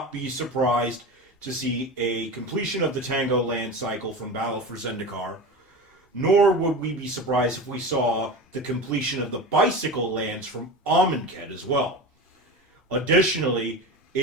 be surprised to see a completion of the Tango land cycle from Battle for Zendikar, nor would we be surprised if we saw the completion of the bicycle lands from Amonkhet as well. Additionally,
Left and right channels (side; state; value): both; normal; correlation 0.28